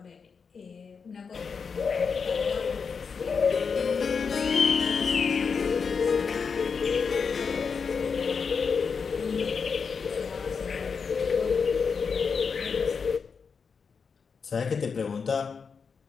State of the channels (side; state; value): right; quieter; 5.6 dB